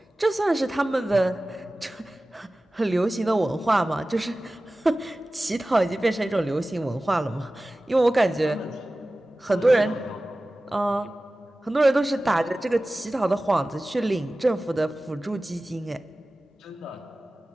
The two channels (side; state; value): both; normal; correlation 0.96